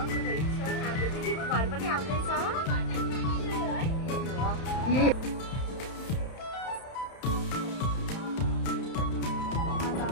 हाम्रो दिदीको घर पनि आउँदैछ।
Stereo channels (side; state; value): right; late; 31 ms